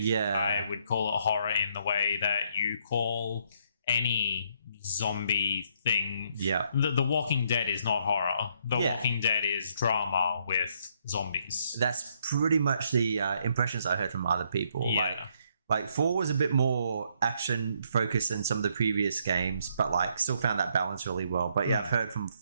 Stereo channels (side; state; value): both; inverted; correlation -0.71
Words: I would call it horror in the way that you call any zombie thing. Yeah. The Walking Dead is not horror. The Walking Dead is drama with zombies. That's pretty much the impressions I heard from other people. Yeah. Like 4 was a bit more action focused than some of the previous games, but still found that balance really well. But yeah, I've heard from